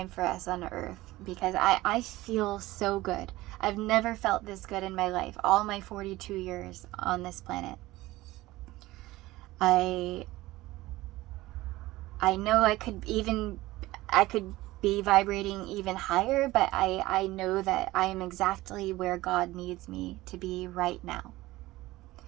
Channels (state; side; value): quieter; left; 18.2 dB